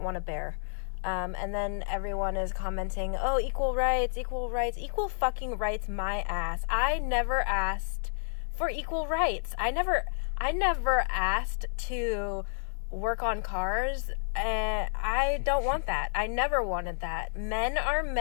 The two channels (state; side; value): silent; right; 58 dB below the other